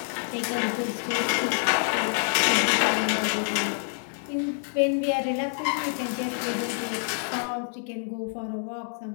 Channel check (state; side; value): silent; right; 58 dB below the other